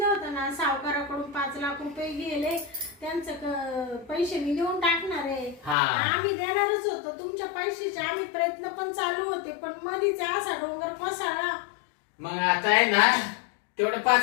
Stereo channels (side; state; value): right; drops out; at 5.8 s